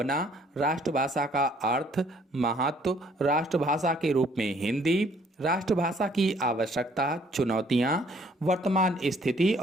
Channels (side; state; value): both; normal; correlation 0.62